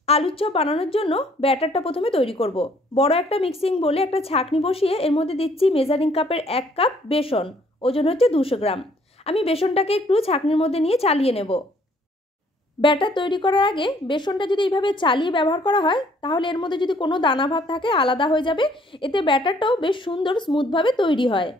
আলুর চপ বানানোর জন্য ব্যাটারটা প্রথমে তৈরি করব। বড় একটা মিক্সিং বলে একটা ছাঁকনি বসিয়ে এর মধ্যে দিচ্ছি মেজারিং কাপের 1 কাপ বেসন, ওজন হচ্ছে 200 গ্রাম। আমি বেসনটাকে একটু ছাঁকনির মধ্যে নিয়ে চালিয়ে নেব। ব্যাটার তৈরি করার আগে বেসনটা যদি এইভাবে চালিয়ে ব্যবহার করা হয় তাহলে এর মধ্যে যদি কোনো দানা ভাব থাকে আলাদা হয়ে যাবে, এতে ব্যাটারটাও বেশ সুন্দর স্মুথভাবে তৈরি হয়।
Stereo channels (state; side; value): normal; both; correlation 0.62